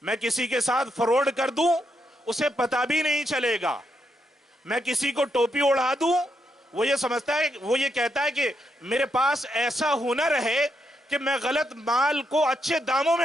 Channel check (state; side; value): normal; both; correlation 0.80